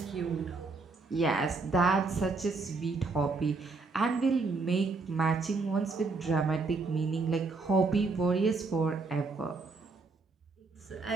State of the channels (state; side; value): quieter; left; 3.9 dB